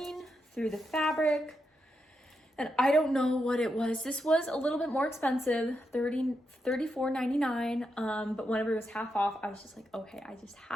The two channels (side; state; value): both; normal; correlation 0.84